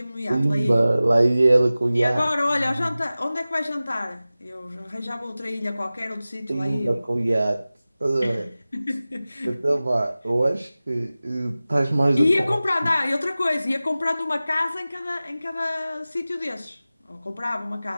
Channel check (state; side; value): inverted; both; correlation -0.97